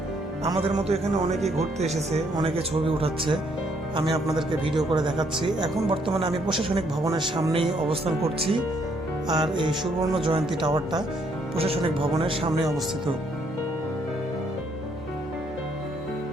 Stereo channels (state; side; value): normal; both; correlation 0.70